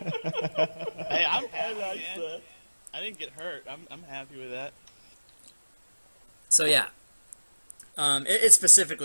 I'm happy, like man. that. I didn't get hurt. I'm happy with that. So yeah, it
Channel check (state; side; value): inverted; both; correlation -1.00